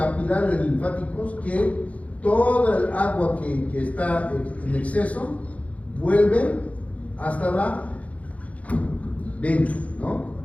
linfáticos que toda el agua que está en exceso vuelve hasta la vena, ¿no?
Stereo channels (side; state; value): right; late; 0.066 ms